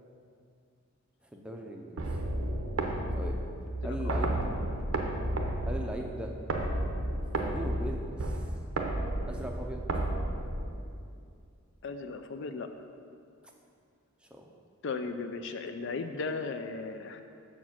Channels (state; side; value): normal; both; correlation 0.57